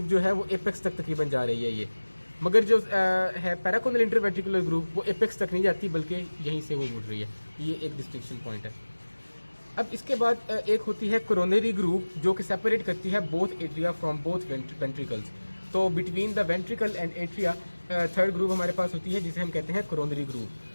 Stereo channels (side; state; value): both; inverted; correlation -1.00